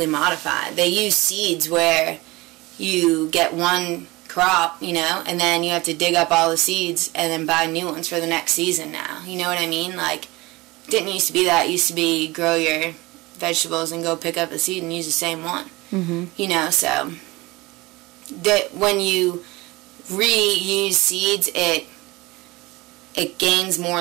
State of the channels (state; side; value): quieter; left; 21.8 dB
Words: modified. They use seeds where you get one crop, you know, and then you have to dig up all the seeds and then buy new ones for the next season now. You know what I mean? Like, it didn't used to be that. It used to be grow your vegetables and go pick up a seed and use the same one. You know, so that when you reuse seeds, it gains more